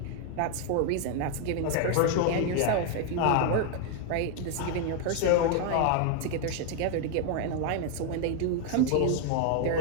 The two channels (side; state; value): both; different; correlation 0.00